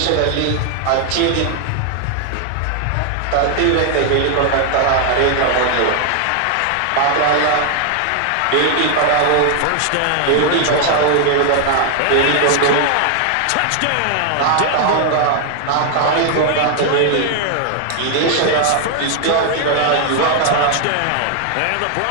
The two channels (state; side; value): different; both; correlation 0.00